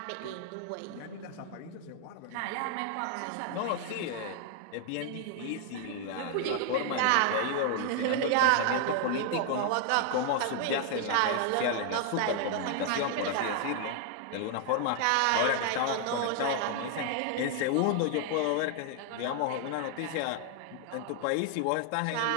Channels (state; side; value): different; both; correlation 0.00